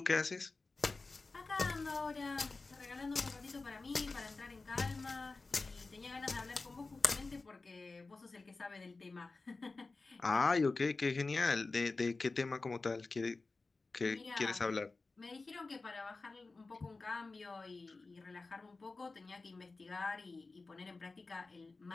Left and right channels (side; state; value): right; quieter; 3.7 dB